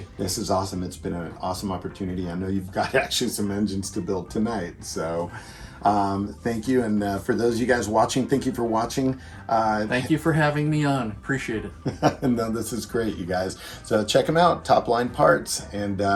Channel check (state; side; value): identical; both; correlation 1.00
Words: This is awesome. It's been an awesome opportunity. I know you've got actually some engines to build tonight. So thank you. And for those of you guys watching, thank you for watching. Thank you for having me on. Appreciate it. No, this is great, you guys. So check them out, Top Line Parts, and